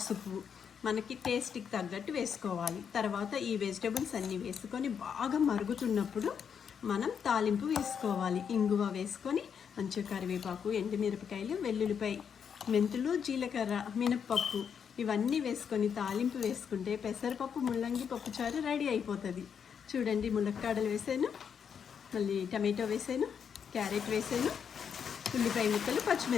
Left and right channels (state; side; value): quieter; right; 7.3 dB